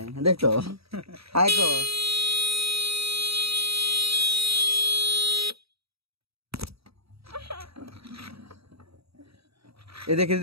দেখ তো হাই কো এ দেখ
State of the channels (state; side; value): late; left; 0.77 ms